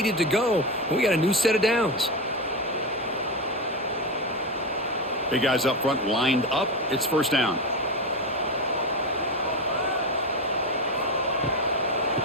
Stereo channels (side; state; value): both; normal; correlation 0.16